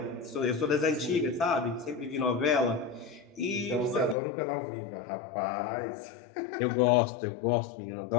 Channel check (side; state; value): right; drops out; at 4.2 s